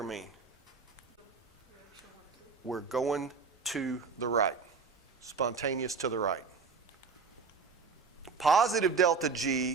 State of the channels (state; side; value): quieter; left; 5.0 dB